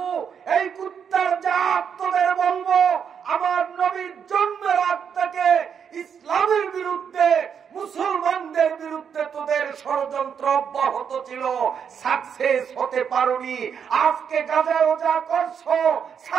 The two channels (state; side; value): quieter; left; 7.4 dB